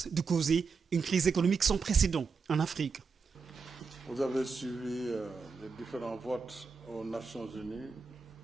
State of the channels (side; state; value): left; quieter; 5.0 dB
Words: de causer une crise économique sans précédent en Afrique. Vous avez suivi les différents votes aux Nations Unies,